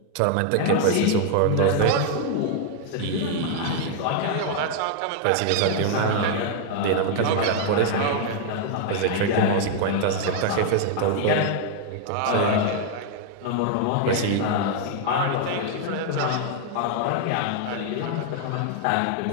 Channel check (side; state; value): both; different; correlation 0.00